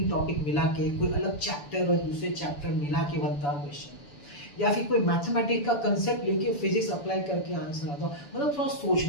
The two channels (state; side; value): late; right; 7.0 ms